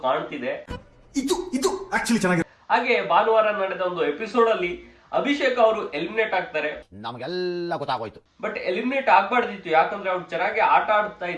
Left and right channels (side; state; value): both; identical; correlation 1.00